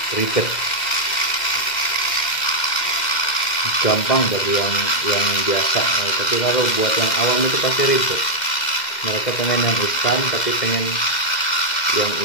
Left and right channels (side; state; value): right; late; 2.1 ms